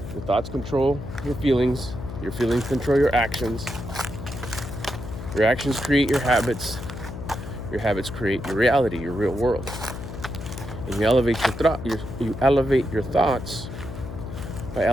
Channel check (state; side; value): noise; left; hum, 9 dB below the sound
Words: Your thoughts control your feelings control your actions create your habits create your reality, your real world. And you elevate your thoughts by